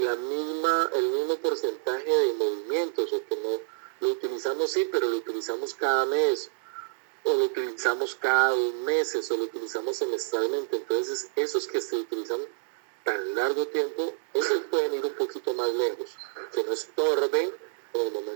mismo porcentaje de movimientos, o que no lo utilizamos, sí, pero lo utilizamos cada mes, o lo utilizamos cada 2 meses, o lo utilizamos semestralmente. Entonces, esos que se utilizan tan largo tiempo, esos pueden ir un poquito más lejos, que no estorben en el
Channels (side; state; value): left; silent; digital silence